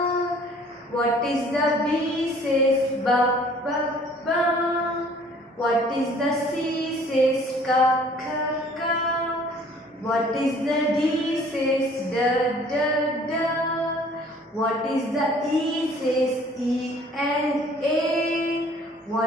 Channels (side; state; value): both; normal; correlation 0.54